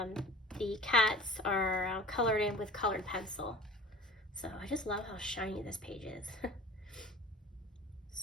cats are colored in with colored pencil. So I just love how shiny this page is.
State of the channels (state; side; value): normal; both; correlation 0.42